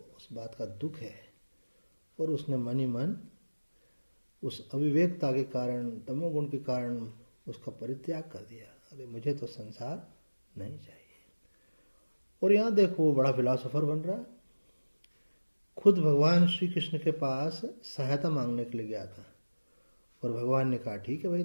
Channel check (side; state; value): both; inverted; correlation -1.00